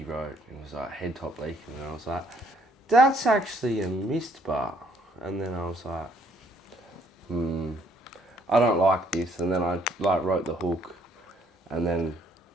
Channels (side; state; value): both; normal; correlation 0.66